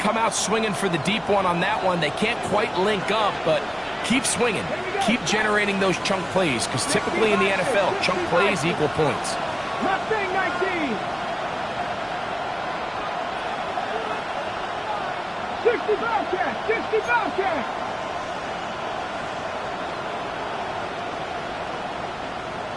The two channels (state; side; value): identical; both; correlation 1.00